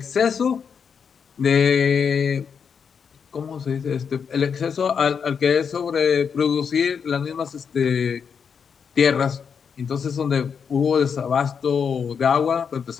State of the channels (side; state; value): right; quieter; 6.6 dB